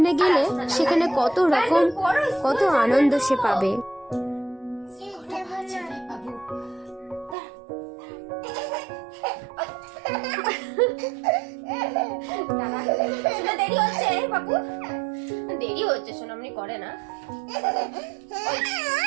গেলে সেখানে কত রকম কত আনন্দ সে পাবে। দেরি হচ্ছে বাবু, দেরি হচ্ছে, সোনামনি করে না।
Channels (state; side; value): drops out; left; at 7.4 s